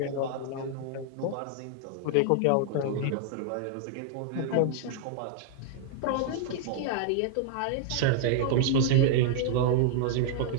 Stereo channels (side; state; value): both; different; correlation 0.00